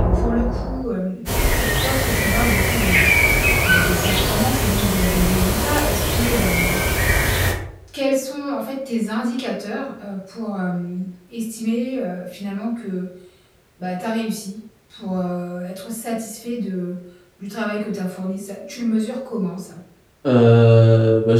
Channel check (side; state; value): both; identical; correlation 1.00